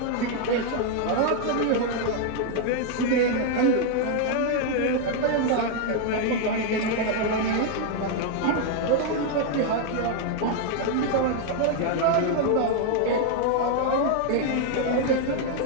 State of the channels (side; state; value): both; different; correlation 0.00